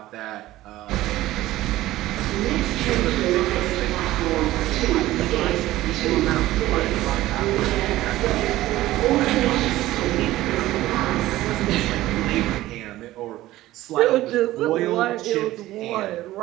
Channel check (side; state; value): left; quieter; 16.0 dB